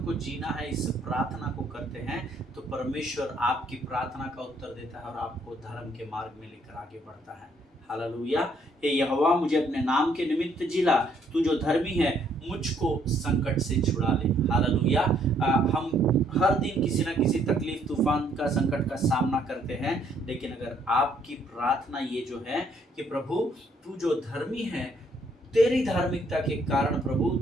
को जीना है इस प्रार्थना को करते हैं, तो परमेश्वर आपकी प्रार्थना का उत्तर देता है और आपको धर्म के मार्ग में लेकर आगे बढ़ता है। हालेलुया। हे यहोवा, मुझे अपने नाम के निमित्त जिला, तू जो धर्मी है मुझको संकट से छुड़ा ले। हालेलुया। हम हर दिन किसी न किसी तकलीफ, तूफान का, संकट का सामना करते हैं, लेकिन अगर आपकी प्रार्थना ये जो है कि प्रभु तू जो धर्मी है, तेरी धार्मिकता के कारण प्रभु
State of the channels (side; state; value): both; normal; correlation 0.67